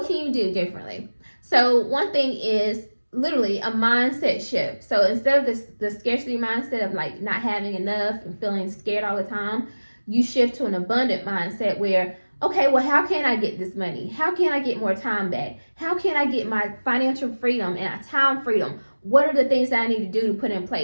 can you do differently? So one thing is literally a mindset shift. So instead of the scarcity mindset of like not having enough and feeling scared all the time, you shift to an abundant mindset where, okay, well, how can I get this money? How can I get more time back? How can I get my financial freedom and time freedom? What are the things that I need to do to put in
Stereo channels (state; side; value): inverted; both; correlation -1.00